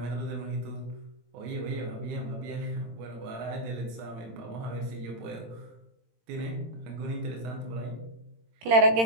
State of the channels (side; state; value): left; late; 18 ms